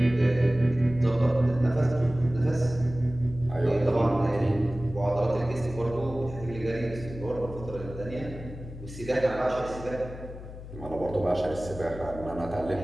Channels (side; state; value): left; noise; hum, 13 dB below the sound